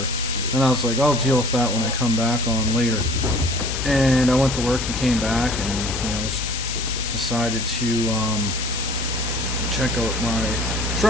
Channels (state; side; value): noise; left; hiss, 5 dB below the sound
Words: and I was like, I'll deal with that when I come back on later. And I went to work and came back, and decided to check out my